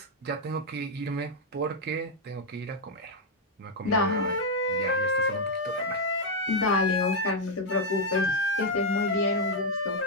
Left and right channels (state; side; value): normal; both; correlation 0.00